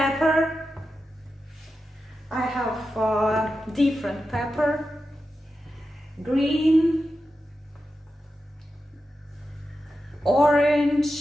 I have different pepper, green,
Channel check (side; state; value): both; normal; correlation 0.90